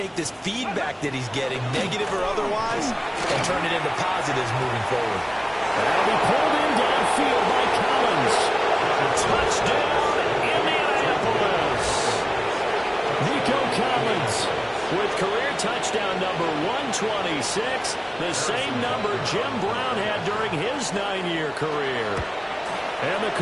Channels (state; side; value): identical; both; correlation 1.00